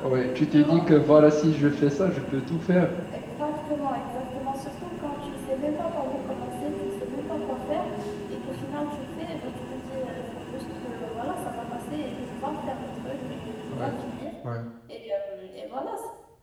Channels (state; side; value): identical; both; correlation 1.00